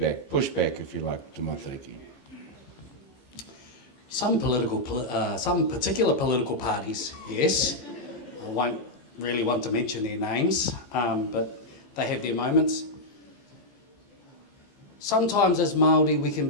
pushback, if you like, to Matariki. Some particular political parties, yes. I won't really want to mention their names, but they have their moments. Sometimes as Māori, we can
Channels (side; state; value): right; late; 15 ms